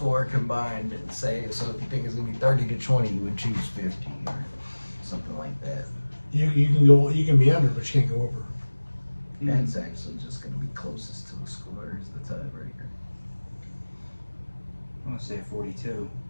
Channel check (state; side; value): inverted; both; correlation -1.00